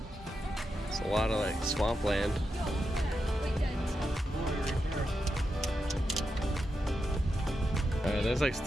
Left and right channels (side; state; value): both; normal; correlation 0.87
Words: It's a lot of like swampland. Alright, there's like